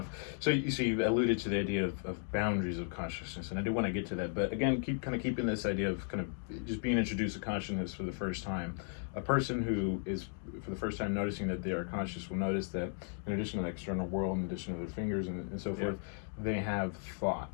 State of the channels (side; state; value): right; silent; 54 dB below the other